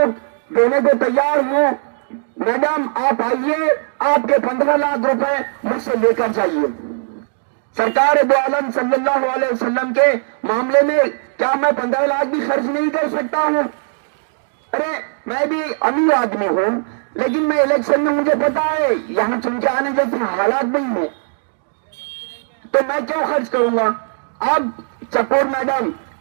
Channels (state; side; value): silent; left; digital silence